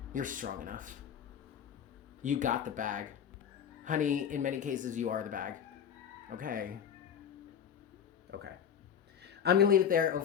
You're strong enough. You got the bag. Honey, in many cases, you are the bag. Okay. Okay. I'm going to leave it there,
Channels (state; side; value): quieter; right; 8.3 dB